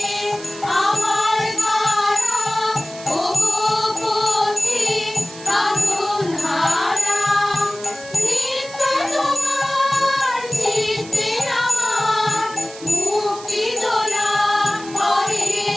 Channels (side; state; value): right; noise; hiss, 16 dB below the sound